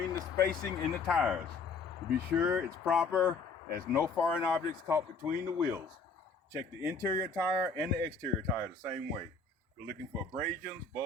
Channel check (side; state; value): right; quieter; 4.5 dB